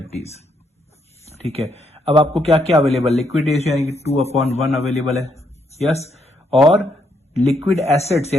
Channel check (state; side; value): normal; both; correlation 0.75